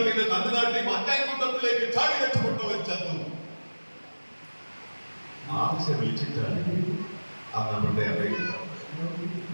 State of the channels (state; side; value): inverted; both; correlation -1.00